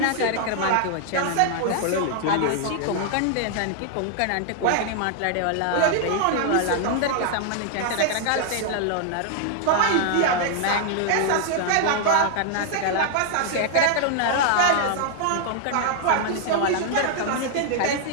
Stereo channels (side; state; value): both; different; correlation 0.00